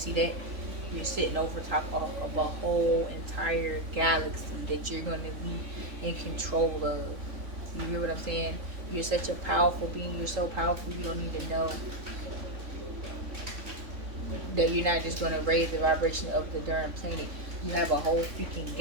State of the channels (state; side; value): late; left; 3.5 ms